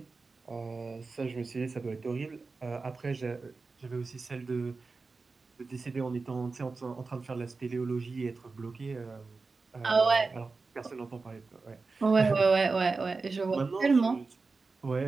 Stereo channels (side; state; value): left; quieter; 4.1 dB